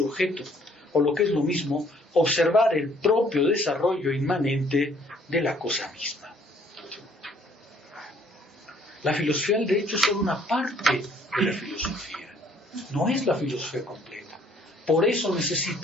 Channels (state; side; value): normal; both; correlation 0.62